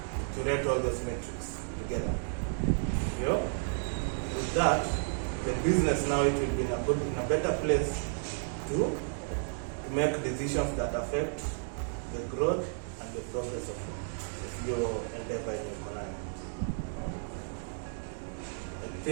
to rate all those metrics together. With that, the business now, it will be in a better place to make decisions that affect the growth and the progress of your endeavor in your career. I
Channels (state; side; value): silent; left; digital silence